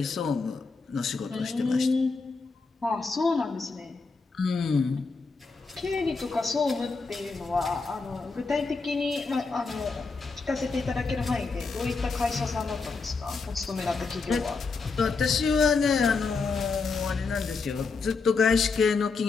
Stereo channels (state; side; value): quieter; right; 4.4 dB